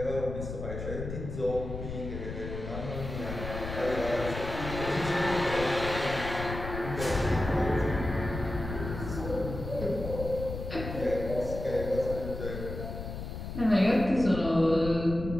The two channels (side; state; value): left; noise; rumble, 7 dB below the sound